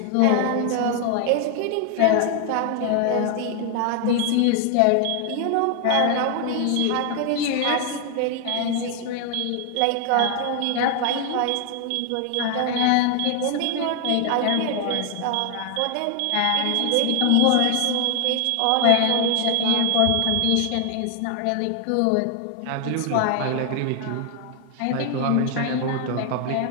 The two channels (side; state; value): both; different; correlation 0.00